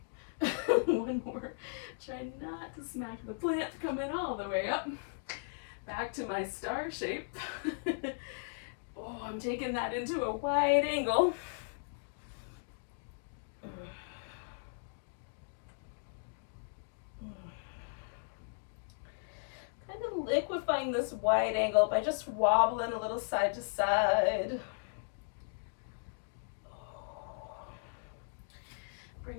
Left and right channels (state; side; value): silent; right; digital silence